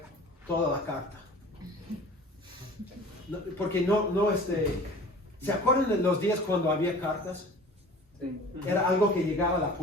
toda la carta. Porque ¿se acuerdan de los días cuando había cartas? Era algo que llegaba a la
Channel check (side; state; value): both; normal; correlation 0.43